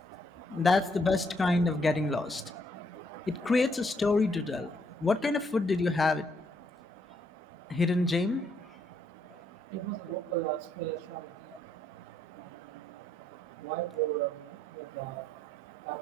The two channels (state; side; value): normal; both; correlation 0.72